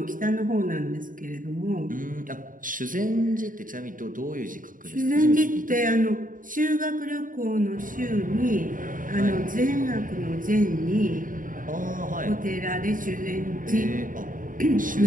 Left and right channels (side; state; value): left; late; 0.39 ms